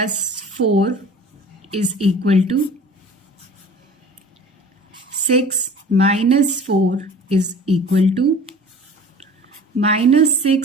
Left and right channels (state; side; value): normal; both; correlation 0.43